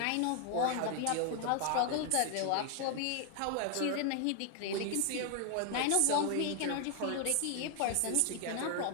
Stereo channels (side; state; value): both; different; correlation 0.00